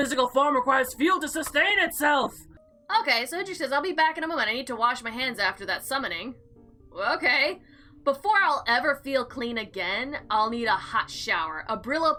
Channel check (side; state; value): both; identical; correlation 1.00